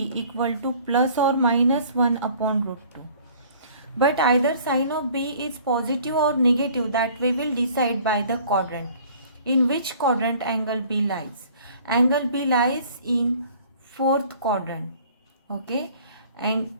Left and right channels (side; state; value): both; inverted; correlation -0.53